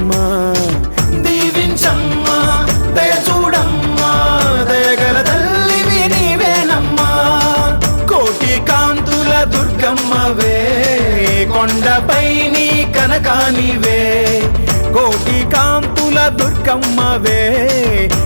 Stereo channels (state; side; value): inverted; both; correlation -1.00